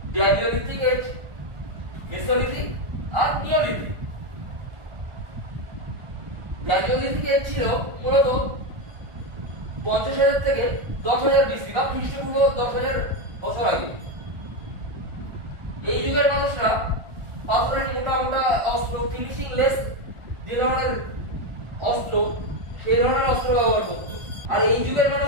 গ্ল্যাডিওলিথিক এজ, মেসোলিথিক আর নিওলিথিক। গ্ল্যাডিওলিথিক এজ ছিল মূলত 50,000 থেকে 10,000 বিসি বা খ্রিস্টপূর্ব 10,000 বছর আগে। এই যুগের মানুষরা পাথরের মোটা মোটা অস্ত্র, ফিনিশিং লেস যে ধরনের অস্ত্র, সেই ধরনের অস্ত্র ব্যবহার করত। আর এই যুগের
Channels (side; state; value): left; late; 1.4 ms